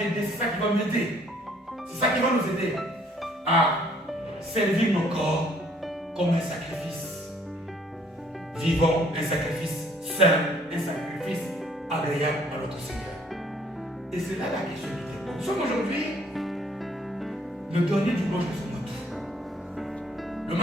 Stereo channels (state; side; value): normal; both; correlation 0.62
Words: c'est ça qui va m'aider. C'est ça qui va nous aider à servir nos corps comme un sacrifice vivant, un sacrifice saint, un sacrifice agréable à notre Seigneur. Et c'est là la question du temps. Nous sommes aujourd'hui le dernier dimanche de ce mois d'août. Le